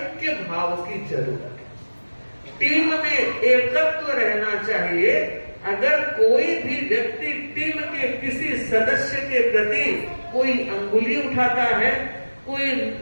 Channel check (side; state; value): both; inverted; correlation -1.00